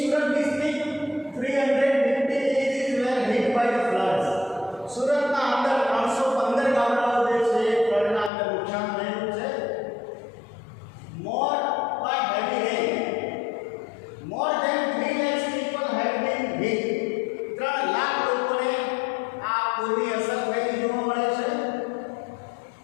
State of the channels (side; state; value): right; drops out; at 8.3 s